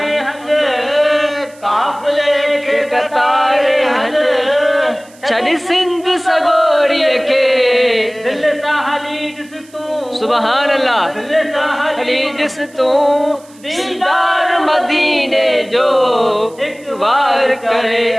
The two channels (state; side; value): noise; right; hiss, 26 dB below the sound